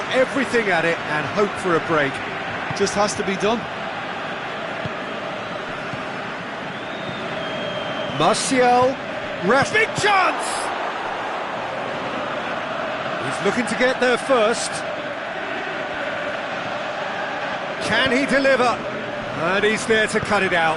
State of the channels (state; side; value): identical; both; correlation 1.00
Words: everything at it and hope for a break. Just has to be done. Martial, big chance! He's looking to get there first. Can he deliver? And he's there to cut it